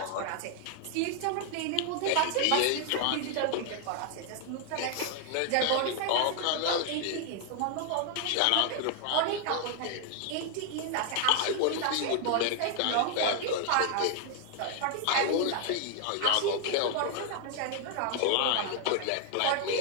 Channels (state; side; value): different; both; correlation 0.00